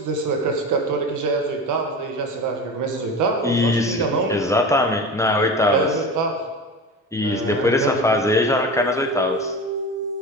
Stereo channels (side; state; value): both; normal; correlation 0.30